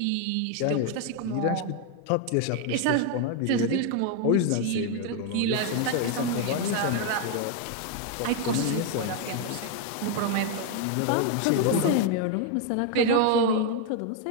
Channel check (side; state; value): both; different; correlation 0.01